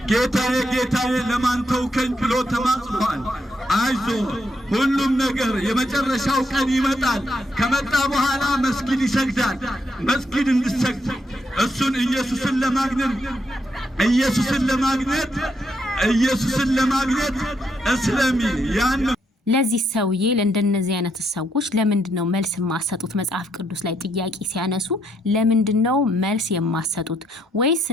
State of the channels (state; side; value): normal; both; correlation 0.77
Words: ጌታዬ ጌታዬ ለማን ተውከኝ ብሎ ተማጽኗል። አይዞ ሁሉም ነገር የመጨረሻው ቀን ይመጣል። ከመጣ በኋላ መስጊድ ይሰግዳል። መስጊድ እንድሰግድ እሱን ኢየሱስን ለማግኘት እስለሚ ያን ለዚህ ሰውዬ ለእንደነዚህ አይነት ሰዎች ለምንድነው መልስ የማሰጡት? መጽሐፍ ቅዱስ ላይ ጥያቄ ሲያነሱ ለምንድነው መልስ የማሰጡት? ወይስ